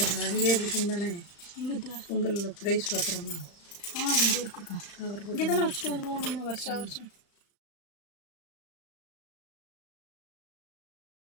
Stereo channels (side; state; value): right; late; 35 ms